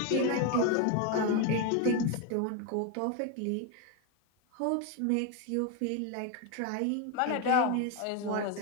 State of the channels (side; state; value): both; different; correlation 0.02